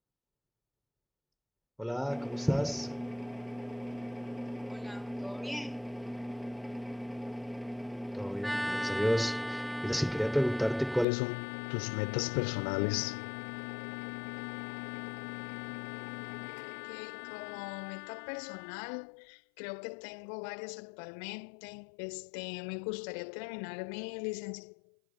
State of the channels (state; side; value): drops out; right; at 11.1 s